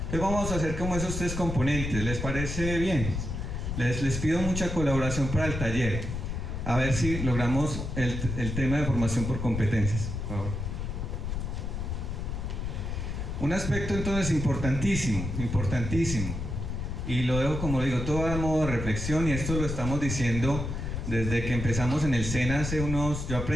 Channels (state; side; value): noise; left; rumble, 4 dB below the sound